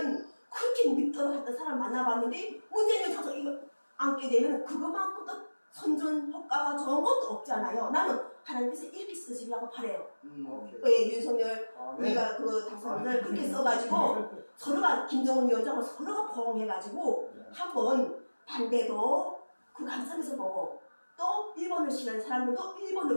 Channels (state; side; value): inverted; both; correlation -1.00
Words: 그렇게 믿도록 했던 사람 만나봤는데 문재인 위원장 이거 앉게 되면 그거만큼 또 선전 효과가 좋은 것도 없잖아요. 나는 하나님께서 이렇게 쓰시려고 바래요. 오케이. 왜 윤석열 아멘. 우리가 그 당선인을 그렇게 써가지고 서로가 김정은 위원장을 서로가 포옹해가지고 한번 반대도 그 관점에서 보고 또 일본을 싫어하는 사람들도